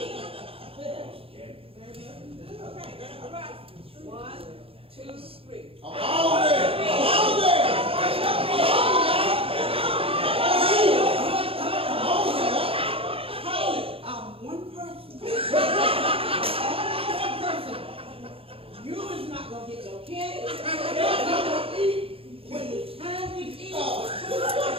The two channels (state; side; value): late; left; 0.27 ms